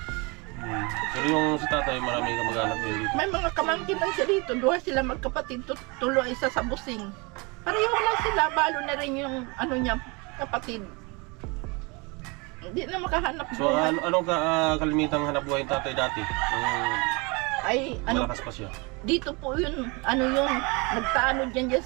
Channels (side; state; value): left; quieter; 28.6 dB